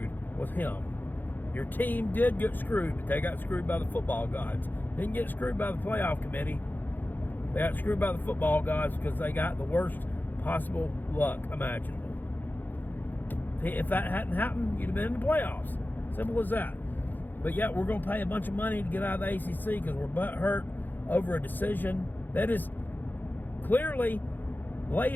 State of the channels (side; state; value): right; late; 0.088 ms